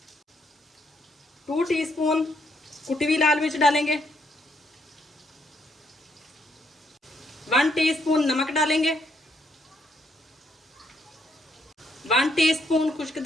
2 टीस्पून कुटी हुई लाल मिर्च डालेंगे। 1 टीस्पून नमक डालेंगे। 1 टीस्पून खुश्क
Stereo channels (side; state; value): both; normal; correlation 0.73